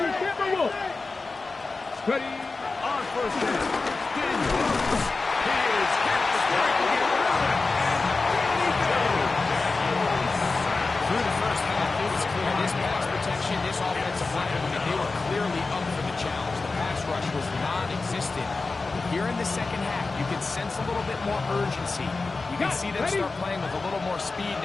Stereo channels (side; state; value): right; quieter; 3.8 dB